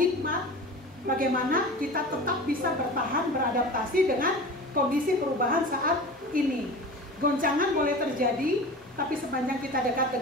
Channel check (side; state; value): both; normal; correlation 0.34